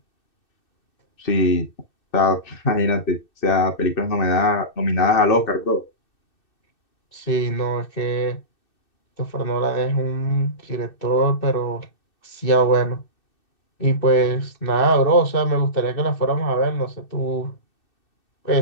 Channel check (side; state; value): right; late; 2.6 ms